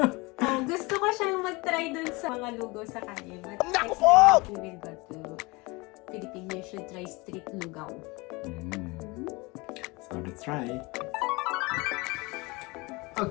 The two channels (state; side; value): quieter; right; 25.1 dB